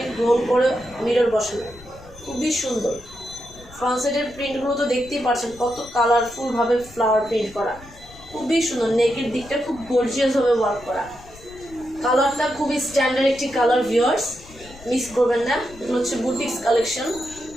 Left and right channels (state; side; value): noise; left; rumble, 21 dB below the sound